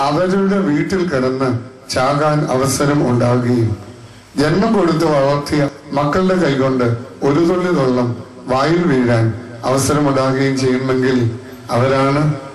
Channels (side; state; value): both; identical; correlation 1.00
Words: അവരുടെ വീട്ടിൽ കിടന്ന് ചാകാൻ അവസരം ഉണ്ടാകുകയും ജന്മം കൊടുത്ത് വളർത്തിയ മക്കളുടെ കൈകൊണ്ട് ഒരു തുള്ളി വെള്ളം വായിൽ വീഴാൻ അവസരമുണ്ടാകുകയും ചെയ്യുമെങ്കിൽ അവരാണ്